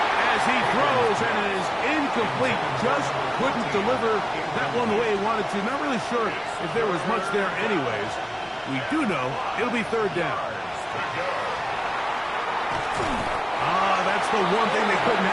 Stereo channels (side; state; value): both; identical; correlation 1.00